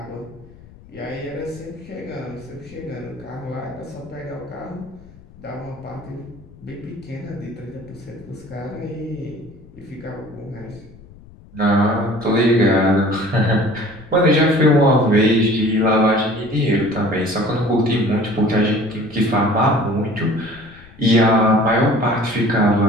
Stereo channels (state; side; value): noise; left; rumble, 22 dB below the sound